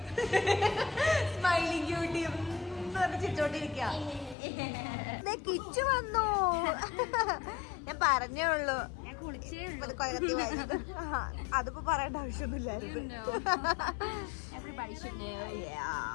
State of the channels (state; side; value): drops out; right; at 4.4 s